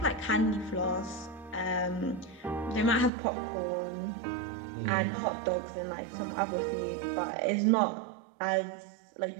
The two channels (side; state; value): left; drops out; at 3.1 s